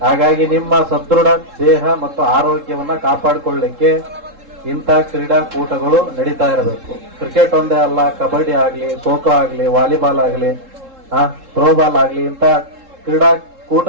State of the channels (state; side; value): late; left; 3.7 ms